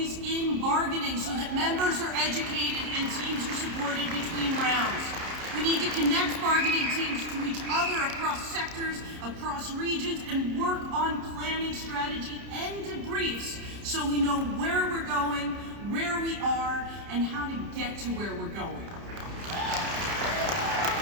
in bargaining, so that members are educated and teams are supported between rounds. We need to connect bargaining teams to each other across sectors, across regions, and work on planning strategy and debriefs so we know where we're going, where we are, and how to get to where we're going.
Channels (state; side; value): late; left; 30 ms